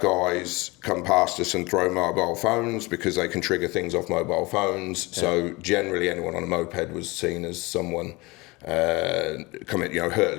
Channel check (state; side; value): quieter; right; 23.8 dB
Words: guys come past us and throw mobile phones, because they can trigger things off mobile phones. So generally anyone on a moped was seen as someone coming,